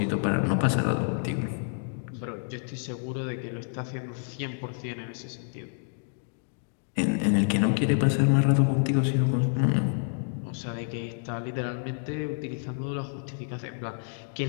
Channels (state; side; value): silent; right; digital silence